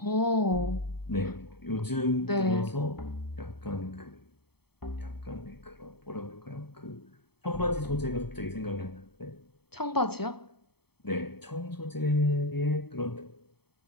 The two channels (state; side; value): late; right; 0.97 ms